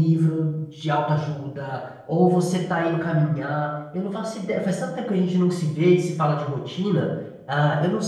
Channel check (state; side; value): identical; both; correlation 1.00